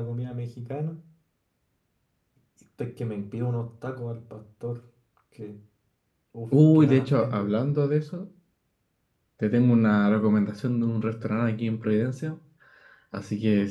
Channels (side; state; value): both; identical; correlation 1.00